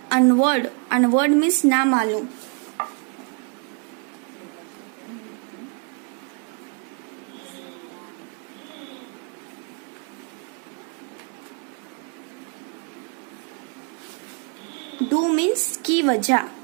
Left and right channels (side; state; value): left; quieter; 38.1 dB